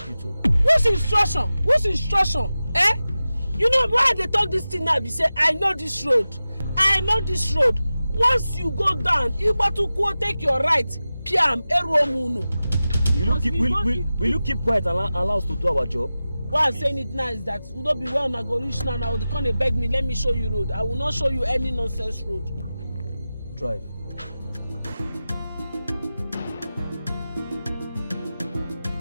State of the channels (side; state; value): both; inverted; correlation -0.95